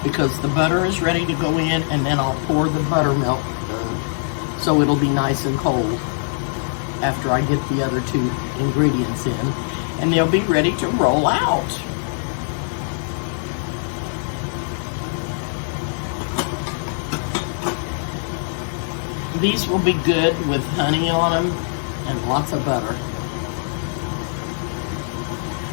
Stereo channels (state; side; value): silent; right; digital silence